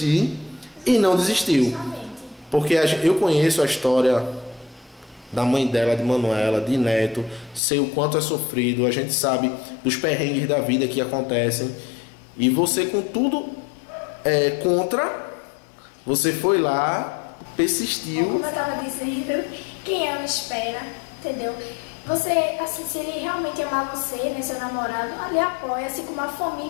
e não desistiu. porque eu conheço a história da mãe dela, de Manuela, de Neto, sei o quanto é sofrido, a gente sabe dos perrengues da vida que acontecem, e você com tudo contra, você foi lá, persistiu. Como eu estava dizendo, quem ama espera, entendeu? Você, assim, se ele realmente amar você, né, seu namorado, ali apoia, assim como a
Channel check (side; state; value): right; drops out; at 7.6 s